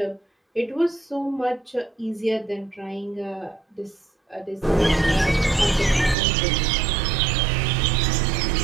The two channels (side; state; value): left; drops out; at 6.2 s